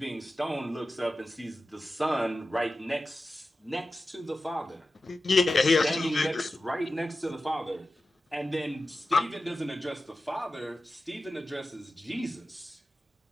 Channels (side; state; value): both; normal; correlation 0.93